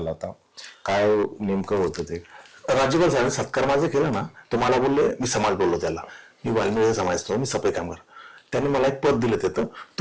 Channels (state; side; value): identical; both; correlation 1.00